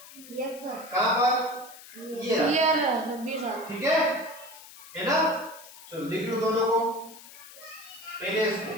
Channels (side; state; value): left; noise; hiss, 18 dB below the sound